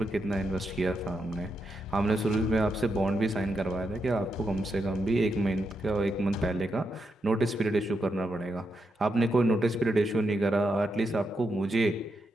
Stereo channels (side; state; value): both; normal; correlation 0.83